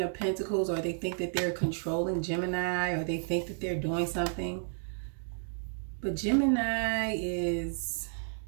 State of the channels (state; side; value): silent; left; digital silence